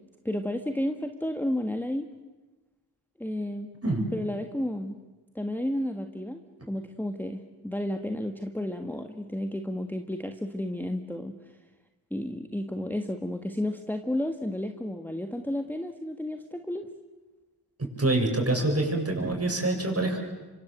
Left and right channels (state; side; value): normal; both; correlation 0.68